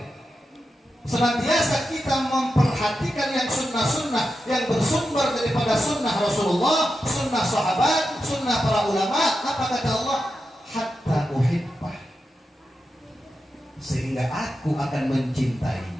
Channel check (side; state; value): both; normal; correlation 0.89